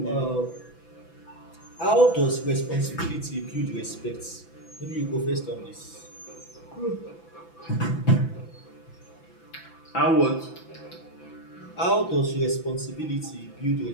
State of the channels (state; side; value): late; right; 6.0 ms